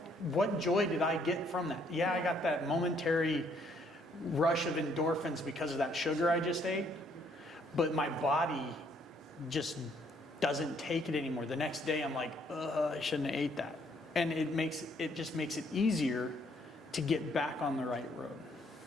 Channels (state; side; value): normal; both; correlation 0.67